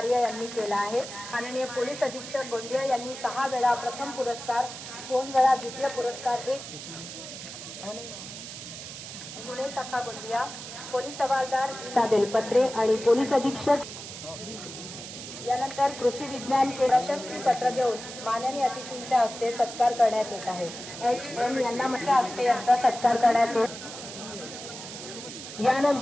यांनी केलं आहे। माननीय पोलीस अधीक्षक गोंदिया यांनी 6 वेळा प्रथम पुरस्कार, 2 वेळा द्वितीय पुरस्कार, 1 पुणे शाखा गोंदिया पोलीस हवालदार बेलपत्रे आणि पोलीस अधीक्षक यानंतर कृषी विज्ञान प्रशस्ती पत्र देऊन माननीय अतिथींच्या हस्ते सत्कार करण्यात येत आहे। HM यांना माझ्या हस्ते यांचा सत्कार करण्यात येतो।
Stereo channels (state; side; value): noise; right; hiss, 11 dB below the sound